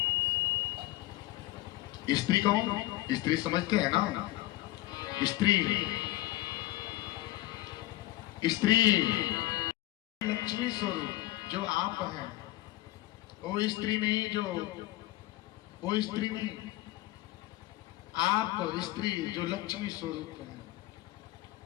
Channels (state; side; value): quieter; right; 16.7 dB